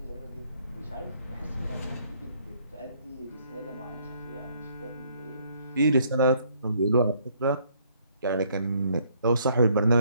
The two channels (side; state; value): both; inverted; correlation -0.66